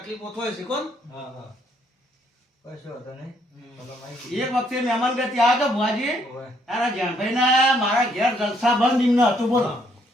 થાય છે કોણ. હા હા કશો હતો નહીં બોલો માહિતી એક વખતે મહેમાન ગતિ આ તો ભુવાજી ઓય તારા જણભાઈના મારા ઘેર જલસા બંધ એમને હતું બોલો.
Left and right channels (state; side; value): normal; both; correlation 0.70